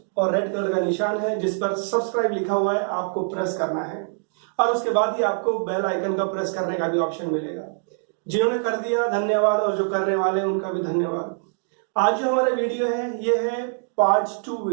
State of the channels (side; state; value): left; silent; digital silence